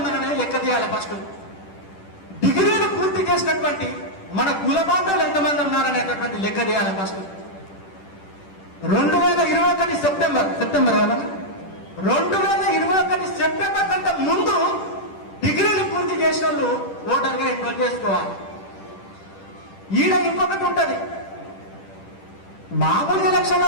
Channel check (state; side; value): late; right; 10 ms